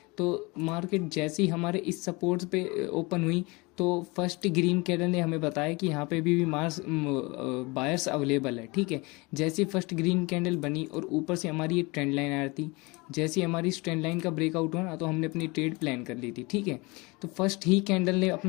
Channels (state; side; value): quieter; right; 25.6 dB